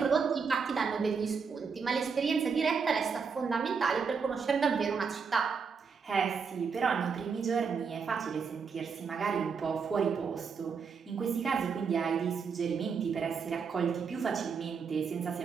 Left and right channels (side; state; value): left; quieter; 5.7 dB